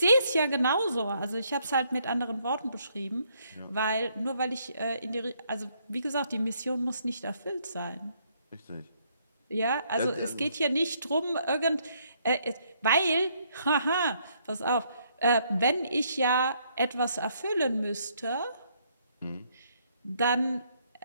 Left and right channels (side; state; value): both; inverted; correlation -0.70